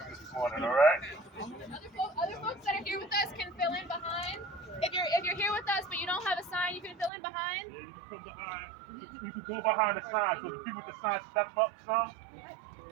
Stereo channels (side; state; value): left; drops out; at 7.1 s